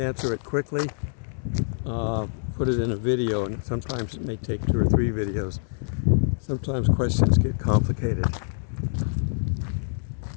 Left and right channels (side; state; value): right; silent; 61 dB below the other